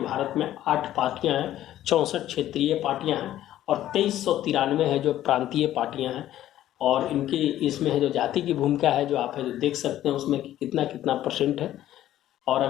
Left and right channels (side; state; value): right; quieter; 12.9 dB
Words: में 8 पार्टियां हैं, 64 क्षेत्रीय पार्टियां हैं और 2393 है जो प्रांतीय पार्टियां हैं। और इनकी इसमें है जो जाति की भूमिका है जो आप है जो देख सकते हैं उसमें कि कितना कितना % है। और